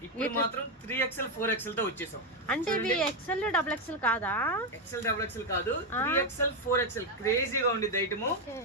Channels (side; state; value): both; normal; correlation 0.05